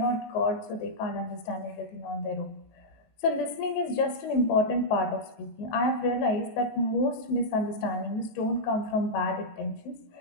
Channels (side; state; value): right; late; 19 ms